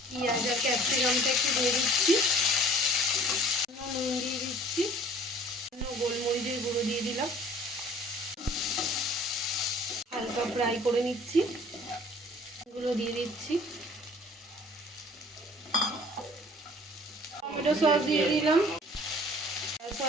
পেঁয়াজ আর ক্যাপসিকামটা একটু দিয়ে দিচ্ছি, নুন দিয়ে দিচ্ছি, গোলমরিচের গুঁড়ো দিয়ে দিলাম, হালকা ফ্রাই করে নিচ্ছি, এগুলো দিয়ে দিচ্ছি, টমেটো সস দিয়ে দিলাম,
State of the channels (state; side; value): normal; both; correlation 0.51